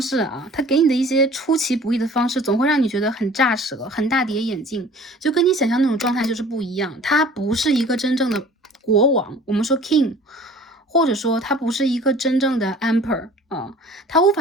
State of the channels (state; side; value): normal; both; correlation 0.47